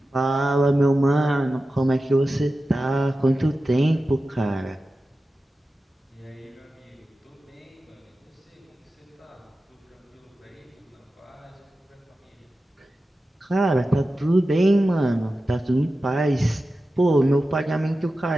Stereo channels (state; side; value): normal; both; correlation 0.93